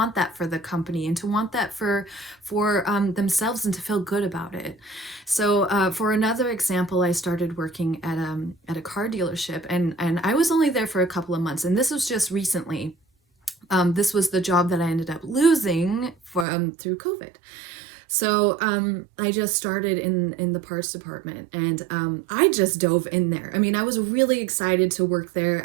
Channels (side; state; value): left; drops out; at 16.4 s